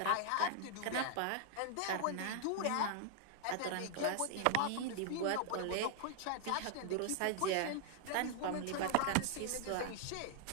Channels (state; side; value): different; both; correlation -0.01